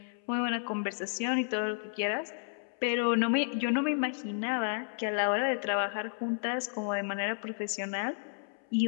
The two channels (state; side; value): silent; right; 56 dB below the other